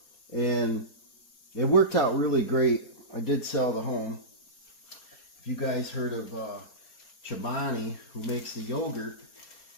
And it worked out really great. I did sell the home. If you guys heard of Chobani, who makes the yogurt,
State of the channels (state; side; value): late; right; 4.4 ms